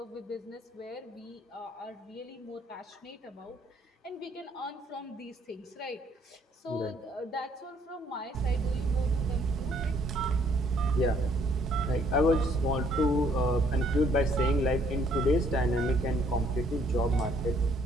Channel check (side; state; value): both; normal; correlation 0.64